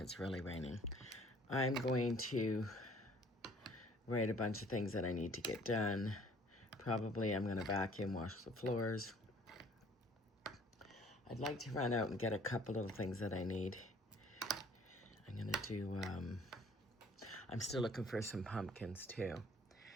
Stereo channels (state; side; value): normal; both; correlation 0.56